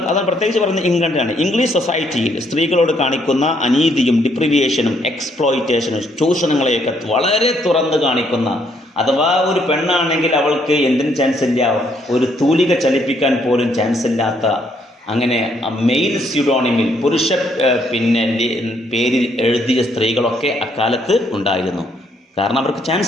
പ്രത്യേകിച്ച് പറയുന്നത് ഇംഗ്ലണ്ടിലാണ്. ഇംഗ്ലീഷ് സൊസൈറ്റിയിൽ സ്ത്രീകളോട് കാണിക്കുന്ന അനീതിയും ഡിപ്രിവിയേഷനും എക്സ്പ്ലോയിറ്റേഷനും ചൂഷണങ്ങളെയൊക്കെ വളരെ തുറന്ന് കാണിക്കുന്ന, അഥവാ ഒരു പെണ്ണാണെങ്കിൽ അവൾക്ക് എന്തിനും ചാൻസ് ഇല്ല, ഒരു തൂലിക ചലിപ്പിക്കാൻ പോലും ചാൻസ് ഇല്ലാത്ത, അങ്ങനെ മെയിൽ സ്യൂഡോണിമിൽ പുരുഷ പേരിൽ എഴുതിയ സ്ത്രീകളൊക്കെ അക്കാലത്ത് ഉണ്ടായിരുന്നു. കാരണം അവർക്ക്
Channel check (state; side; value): normal; both; correlation 0.70